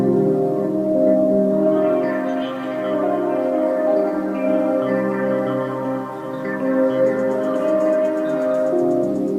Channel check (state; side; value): identical; both; correlation 1.00